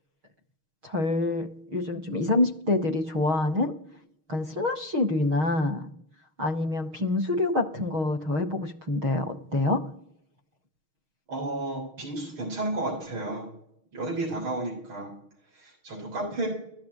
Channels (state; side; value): late; left; 6.4 ms